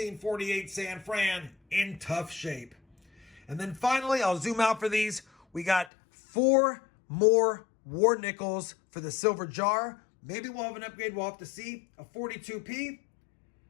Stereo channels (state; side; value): drops out; right; at 5.9 s